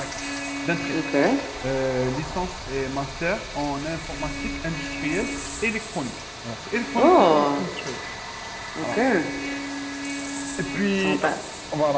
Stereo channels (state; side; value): identical; both; correlation 1.00